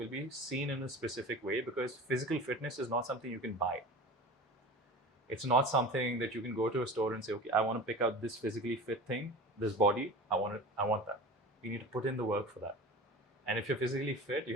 be seen in a specific way because physical fitness is not something you can buy. It's not something that you can go to a store and say, okay, I want to pick out this physically fit thing, this body, I want that. You need to put in the work for that. And if you're physically fit,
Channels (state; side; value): normal; both; correlation 0.35